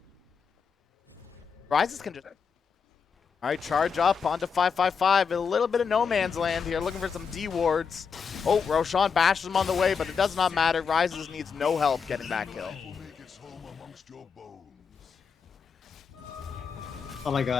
Rises can just... All right, charge up onto 555. A little bit of no man's land here, looking for some D wards. Oh, Roshan bashes him on the way, but it does not matter. Rises needs no help getting that kill. Oh my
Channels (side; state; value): right; quieter; 6.0 dB